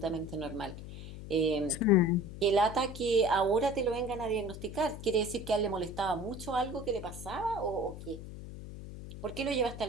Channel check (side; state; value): left; noise; hum, 11 dB below the sound